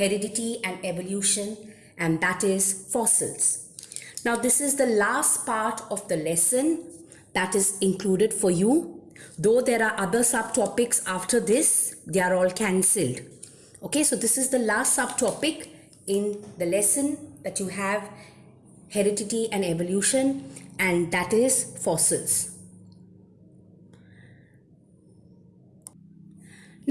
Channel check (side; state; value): both; identical; correlation 1.00